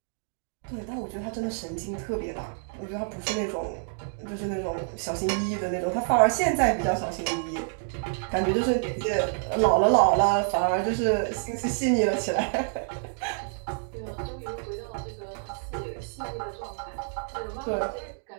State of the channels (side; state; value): left; silent; digital silence